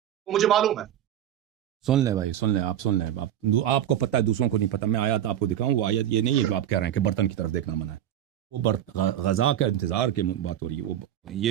وہ مجھے معلوم ہے. سن لیں بھائی، سن لیں، آپ سن لیں. آپ کو پتہ ہے دوسروں کو نہیں پتہ. میں آیت آپ کو دکھاؤں، وہ آیت یہ نہیں ہے جو آپ کہہ رہے ہیں کہ برتن کی طرف دیکھنا منع ہے. غذا کا انتظار کی بات ہو رہی ہے. وہ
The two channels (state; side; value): quieter; left; 11.1 dB